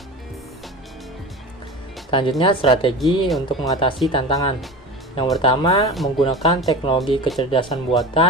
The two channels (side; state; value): both; normal; correlation 0.31